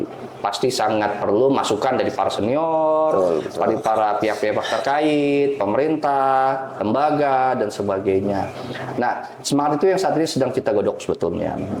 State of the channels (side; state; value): both; identical; correlation 1.00